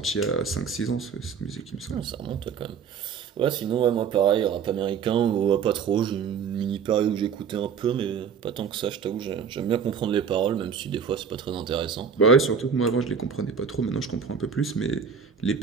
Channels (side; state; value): left; quieter; 6.6 dB